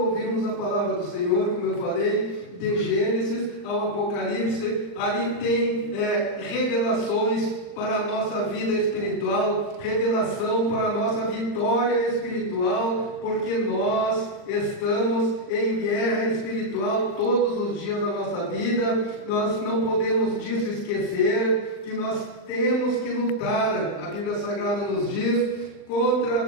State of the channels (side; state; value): right; late; 39 ms